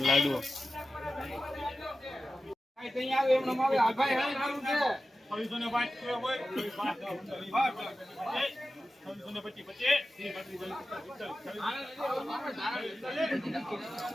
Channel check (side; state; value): both; normal; correlation 0.94